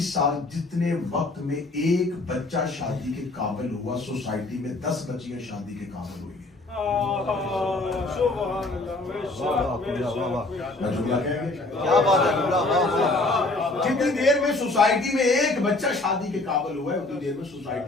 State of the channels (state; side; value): quieter; right; 3.0 dB